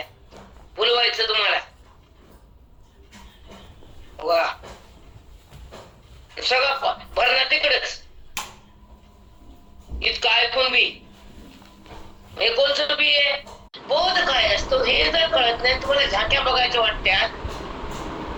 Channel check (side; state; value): both; identical; correlation 1.00